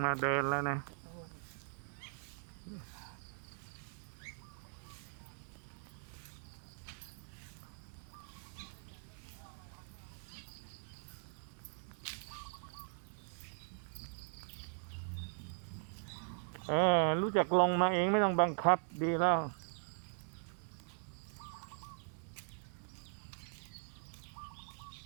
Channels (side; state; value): left; silent; digital silence